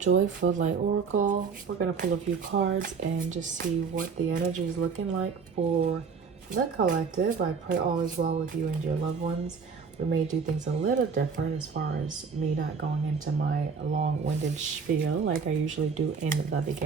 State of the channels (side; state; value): left; quieter; 5.6 dB